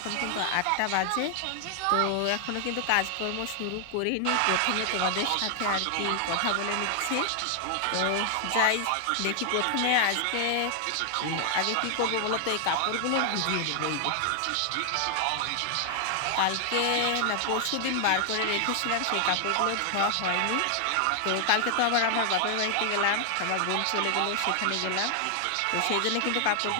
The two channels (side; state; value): both; different; correlation 0.00